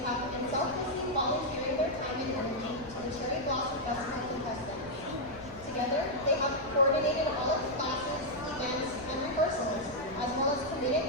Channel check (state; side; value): noise; left; rumble, 18 dB below the sound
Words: been selflessly volunteering their time and energy to the Cherry Blossom Festival contestants. Together, they have coordinated all of the classes, events, and rehearsals, as well as